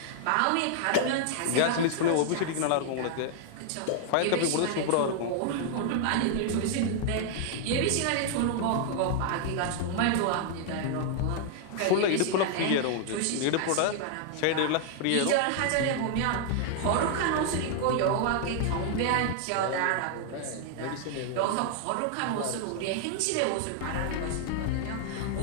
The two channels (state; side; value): different; both; correlation 0.00